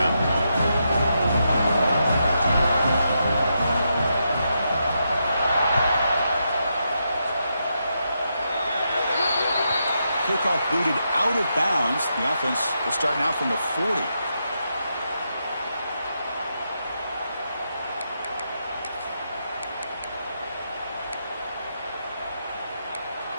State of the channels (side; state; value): both; inverted; correlation -0.83